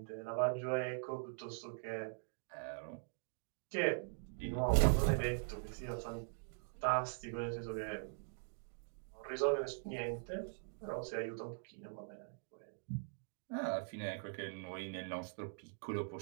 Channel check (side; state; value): left; silent; digital silence